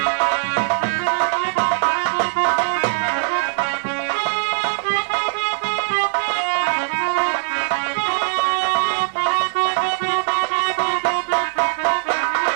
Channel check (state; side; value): silent; left; digital silence